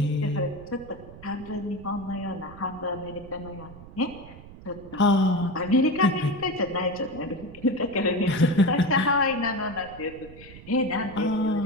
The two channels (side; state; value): right; noise; rumble, 17 dB below the sound